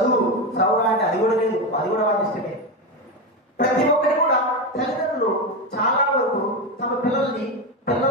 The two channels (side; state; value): both; normal; correlation 0.15